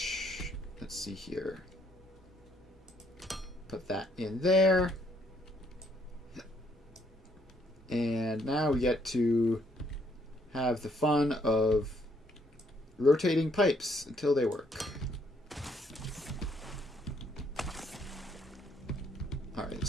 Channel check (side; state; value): both; normal; correlation 0.69